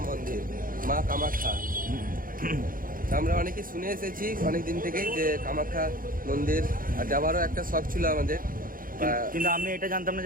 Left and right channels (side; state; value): left; late; 0.41 ms